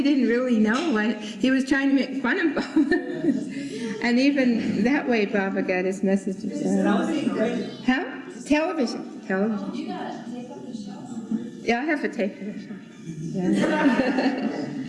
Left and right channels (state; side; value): identical; both; correlation 1.00